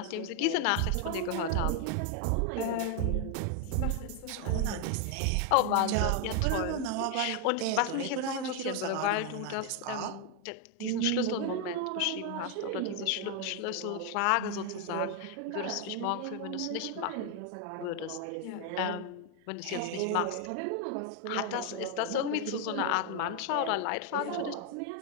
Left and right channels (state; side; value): different; both; correlation 0.01